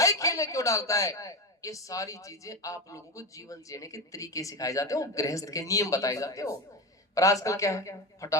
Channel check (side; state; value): both; normal; correlation 0.20